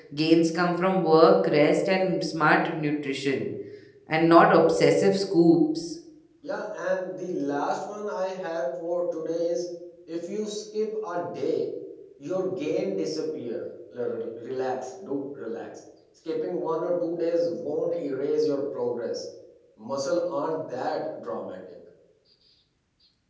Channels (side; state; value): both; identical; correlation 1.00